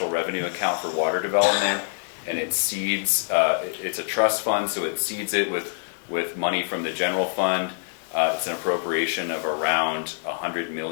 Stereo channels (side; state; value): right; silent; digital silence